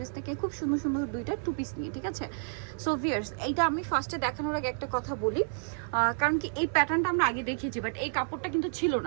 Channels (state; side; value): silent; left; digital silence